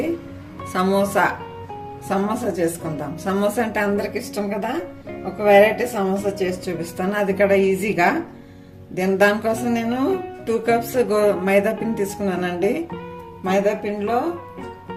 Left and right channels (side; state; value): both; identical; correlation 1.00